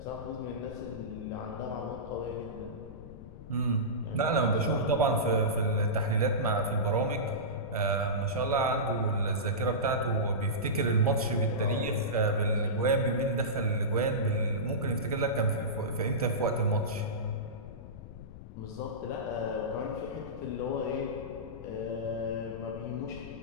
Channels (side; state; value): left; noise; rumble, 14 dB below the sound